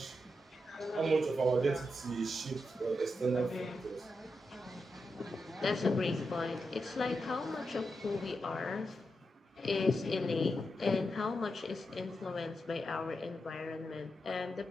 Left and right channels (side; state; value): both; normal; correlation 0.86